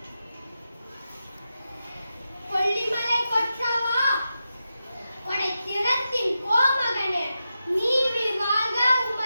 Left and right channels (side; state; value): both; inverted; correlation -0.90